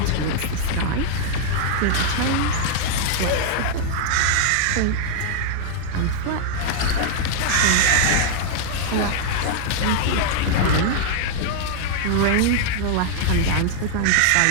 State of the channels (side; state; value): both; different; correlation -0.01